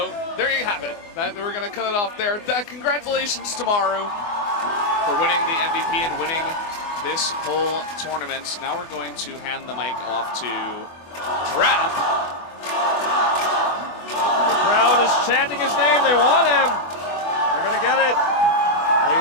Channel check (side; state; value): right; late; 24 ms